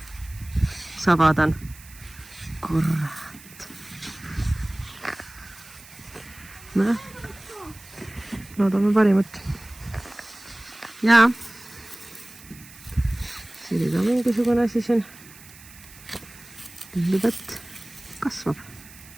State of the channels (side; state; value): right; noise; hiss, 20 dB below the sound